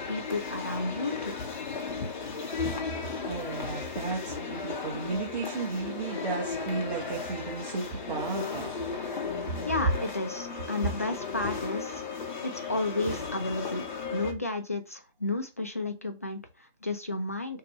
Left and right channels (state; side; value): inverted; both; correlation -0.44